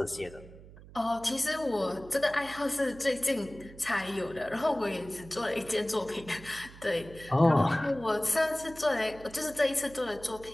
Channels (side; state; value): right; noise; hum, 18 dB below the sound